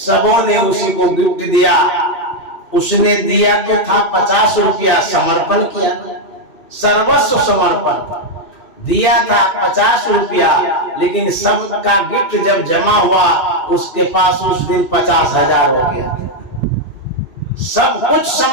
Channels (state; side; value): late; right; 2.6 ms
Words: ने उसी को गिफ्ट दिया। उसने दिया तो था 50 रुपया, समर्पण किया, सर्वस्व समर्पण दिया था 50 रुपया, लेकिन सबका गिफ्ट जब जमा हुआ उसके पास उस दिन 50,000 हो गया। सब कुछ